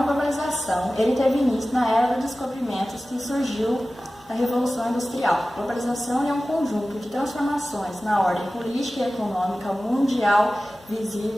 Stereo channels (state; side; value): normal; both; correlation 0.96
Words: globalização, ele teve início na era dos descobrimentos que surgiu na Revolução Industrial. Globalização é um conjunto de transformações na ordem política e econômica mundial